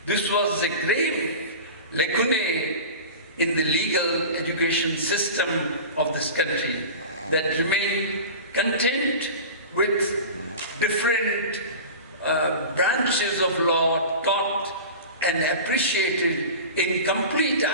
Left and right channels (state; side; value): inverted; both; correlation -0.33